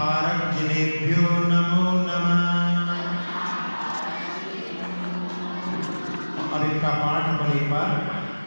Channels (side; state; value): both; inverted; correlation -1.00